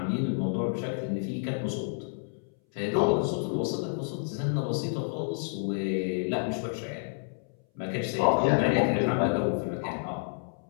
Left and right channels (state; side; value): silent; right; 58 dB below the other